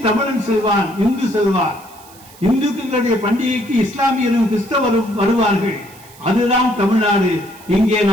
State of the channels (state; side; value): noise; right; hiss, 23 dB below the sound